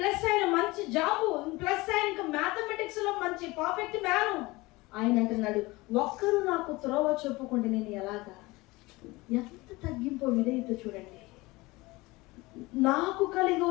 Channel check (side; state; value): right; quieter; 21.9 dB